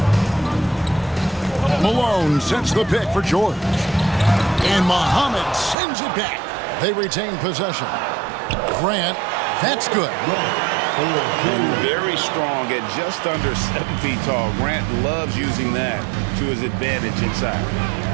Malone sets the pick for George. And Muhammad sends it back. They retain possession. Grant, that's good. Very strong at just under 7 feet tall. Grant loves using that to his advantage inside.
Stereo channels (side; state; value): left; drops out; at 5.8 s